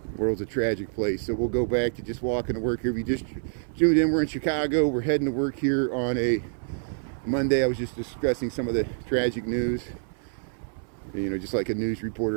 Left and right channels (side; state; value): left; silent; 59 dB below the other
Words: world's a tragic place. So we'll go back to just walking to work here. If you just tuned in, we're in Chicago. We're heading to work here on a Monday. I was just discussing some of the tragic news. You know, just like a news